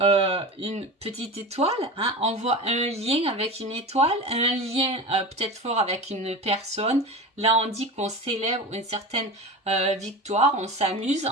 une petite étoile, hein, on voit un lien avec une étoile, un lien peut-être fort avec une personne. Là, on dit qu'on célèbre une certaine victoire, on s'amuse.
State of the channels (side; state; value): both; normal; correlation 0.30